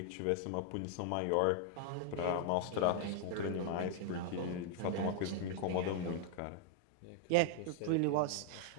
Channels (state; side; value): different; both; correlation 0.00